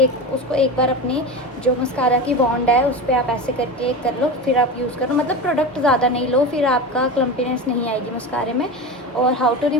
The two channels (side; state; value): both; normal; correlation 0.25